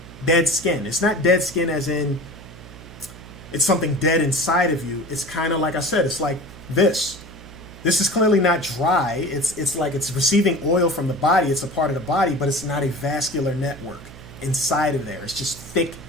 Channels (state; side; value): noise; right; hum, 17 dB below the sound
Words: dead skin. It's not dead skin as in it's something dead inside of you. It's kind of like I said, it's like this. This is clearly not dry. It's like it's receiving oil from the body. It's a part of the body, but it's not a vascular network inside of there. It's just thick,